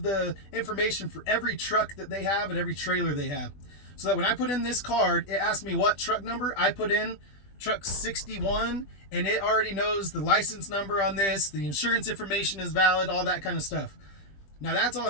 the information for every truck that they have and every trailer they have. So that when I put in this card, it asked me what truck number. I put in truck 61, and it already knows the license number on this, the insurance information is valid, all that kind of stuff. Now that's all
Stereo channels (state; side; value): late; right; 20 ms